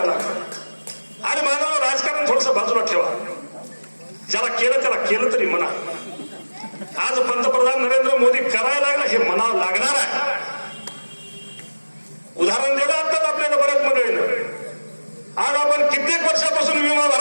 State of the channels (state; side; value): inverted; both; correlation -1.00